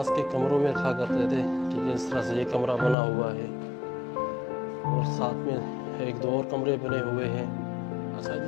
کے کمروں میں رکھا کرتے تھے، کیونکہ اس طرح سے یہ کمرہ بنا ہوا ہے، اور ساتھ میں ایک دو اور کمرے بنے ہوئے ہیں۔ اچھا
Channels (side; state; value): right; drops out; at 3.0 s